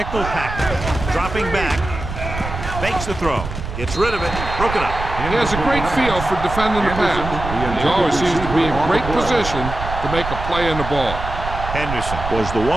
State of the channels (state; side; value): noise; right; rumble, 7 dB below the sound